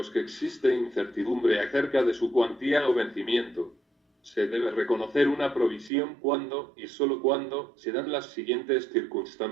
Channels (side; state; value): left; drops out; at 5.9 s